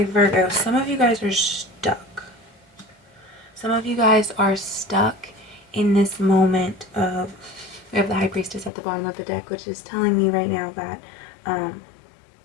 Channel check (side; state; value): right; drops out; at 8.7 s